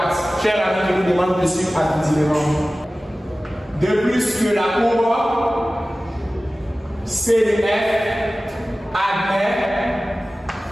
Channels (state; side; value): normal; both; correlation 0.96